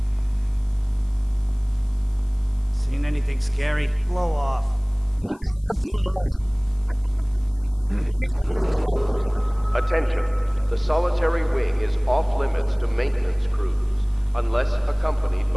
Seen anything scary? Blow off. Blow off! Cred că i-aș putea evita pe ăștia dacă nu mă înșel. Adică încercăm.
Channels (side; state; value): left; noise; hiss, 30 dB below the sound